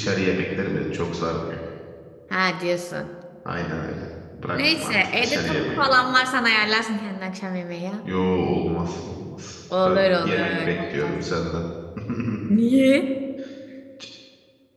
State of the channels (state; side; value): identical; both; correlation 1.00